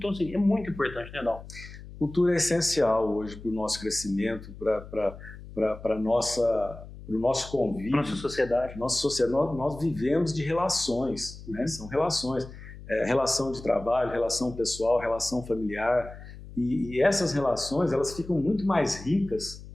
assim, é muito importante, né, Dal? Cultura é essencial hoje para o nosso crescimento, para o nosso convívio. Nossa sociedade. Nós vivemos de relações, né? São relações. Relação de trabalho, relação pessoal, relação familiar. E essas relações, elas ficam muito mais ricas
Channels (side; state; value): left; noise; hum, 15 dB below the sound